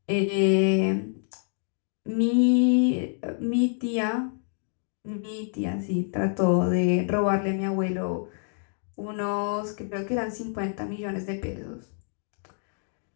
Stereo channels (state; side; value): silent; right; digital silence